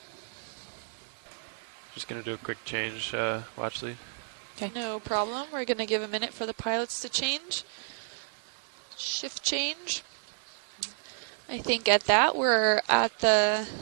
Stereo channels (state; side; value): silent; left; 57 dB below the other